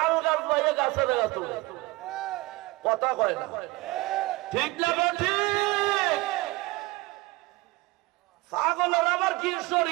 গাছ পাইয়ে গাছে লাগাত, কথা কয় না, ঠিক না? ঠিক। পাগলের আবার কি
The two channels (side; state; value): left; quieter; 21.5 dB